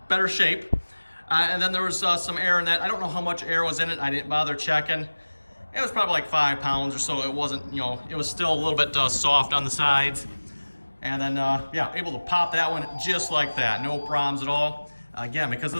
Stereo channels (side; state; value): both; inverted; correlation -1.00